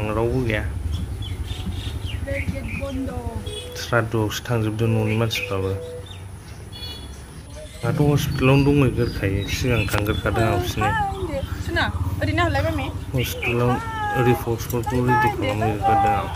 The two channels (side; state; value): both; identical; correlation 1.00